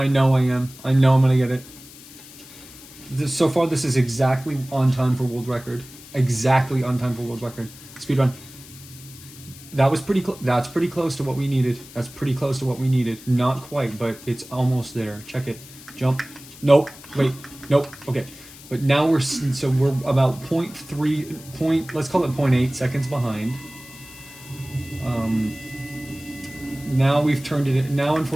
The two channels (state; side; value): noise; left; hiss, 19 dB below the sound